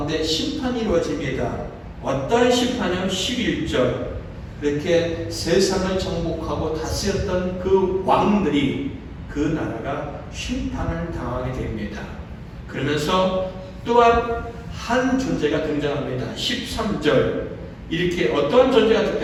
심판이 이루어집니다. 어떤 심판이요? 11절. 이렇게 세상을 정복하고 다스렸던 그 왕들이, 그 나라가 심판을 당하게 됩니다. 그러면서 또한 한 존재가 등장합니다. 13절. 이렇게 어떤 존재가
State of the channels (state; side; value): identical; both; correlation 1.00